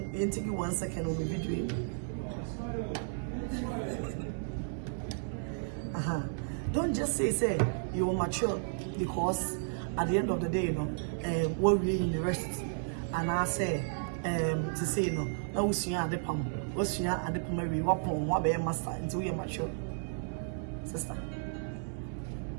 take you 1 second on the video. Don't just say you're mature because at the end of the day, you know, we're really in the rest. And I say to say no, now we see at the palm, we see at the palm, we walk on what be master until you're mature. Sister,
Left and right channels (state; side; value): silent; left; 56 dB below the other